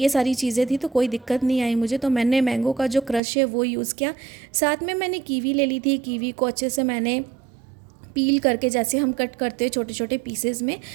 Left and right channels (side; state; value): left; drops out; at 3.2 s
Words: सारी चीज़ें थी, तो कोई दिक्कत नहीं आई मुझे। तो मैंने मैंगो का जो क्रश है वो यूज़ किया, साथ में मैंने कीवी ले ली थी। कीवी को अच्छे से मैंने पील करके जैसे हम कट करते हैं छोटे छोटे पीसेस में,